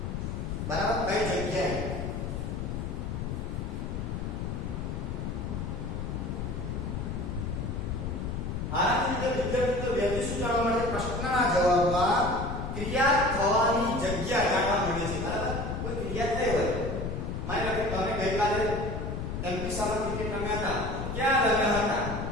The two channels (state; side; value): noise; left; rumble, 4 dB below the sound